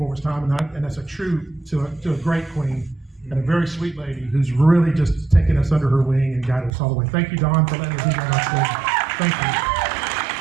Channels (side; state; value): left; drops out; at 6.7 s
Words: it was time, and that's a true to a great queen and a very sweet lady who's really just taken us under her wing and guided us all the way. Thank you, Dawn, for letting me be on our stage. Thank you.